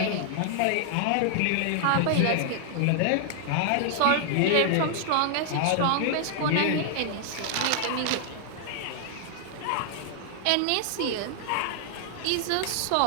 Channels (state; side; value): different; both; correlation -0.01